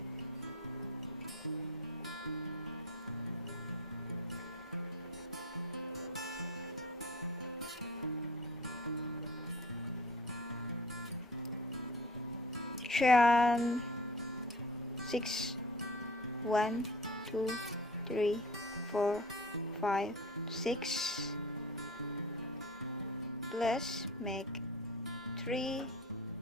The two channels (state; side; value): normal; both; correlation 0.41